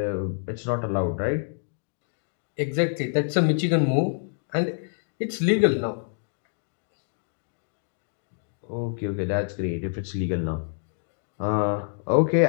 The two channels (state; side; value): silent; right; digital silence